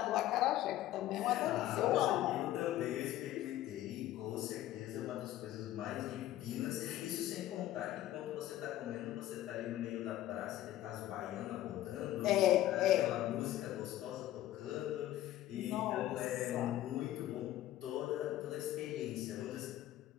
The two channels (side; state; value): right; quieter; 13.9 dB